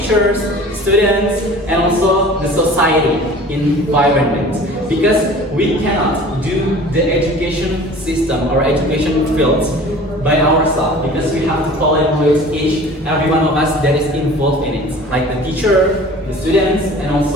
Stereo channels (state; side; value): normal; both; correlation 0.44